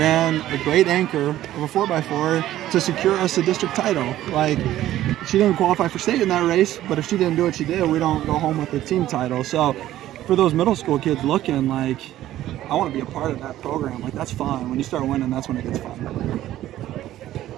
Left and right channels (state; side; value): quieter; left; 13.7 dB